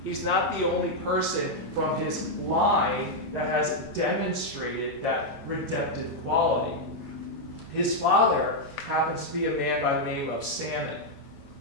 He's not the only person from his line that has demonstrated that redemptive quality. His father happens to be a man by the name of Salmon.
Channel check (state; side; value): normal; both; correlation -0.02